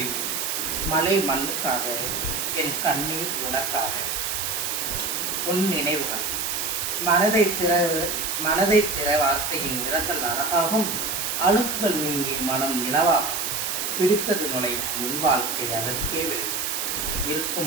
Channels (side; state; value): right; noise; hiss, 1 dB below the sound